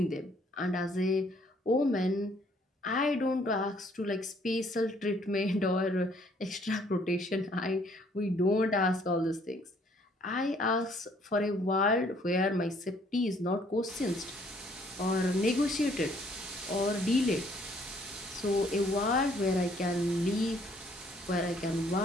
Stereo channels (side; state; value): both; normal; correlation 0.63